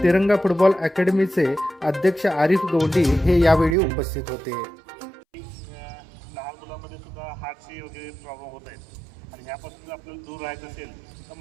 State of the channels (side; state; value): left; drops out; at 3.8 s